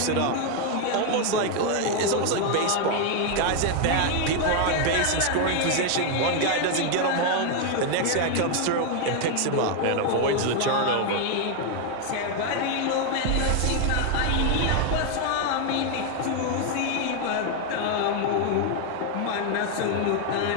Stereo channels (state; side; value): different; both; correlation 0.01